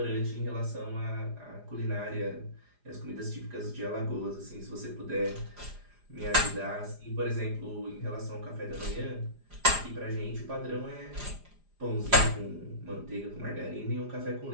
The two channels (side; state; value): left; late; 4.9 ms